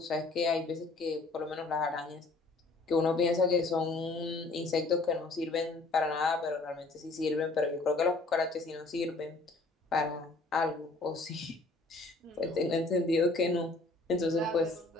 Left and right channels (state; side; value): quieter; right; 3.3 dB